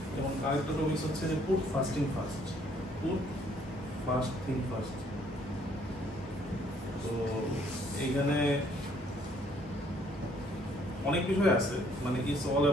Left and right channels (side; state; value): both; normal; correlation 0.64